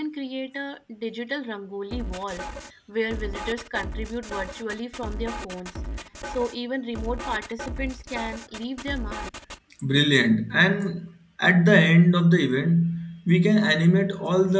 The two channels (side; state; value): both; identical; correlation 1.00